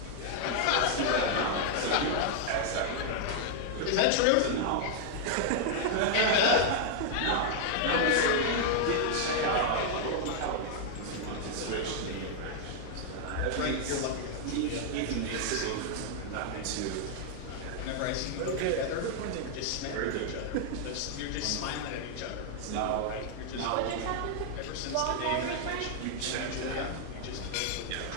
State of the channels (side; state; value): both; different; correlation 0.00